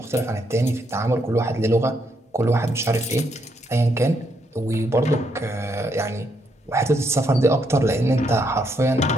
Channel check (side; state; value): both; normal; correlation 0.76